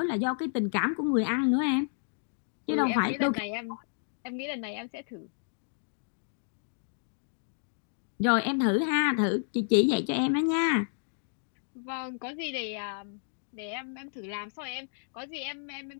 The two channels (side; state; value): right; silent; digital silence